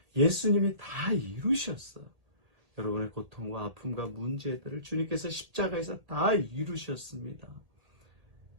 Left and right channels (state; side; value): late; left; 1.8 ms